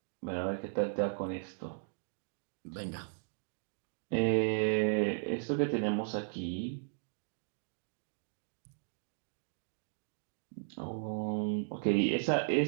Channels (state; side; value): silent; left; digital silence